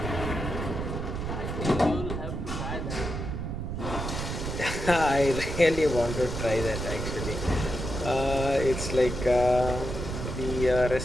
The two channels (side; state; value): right; noise; rumble, 4 dB below the sound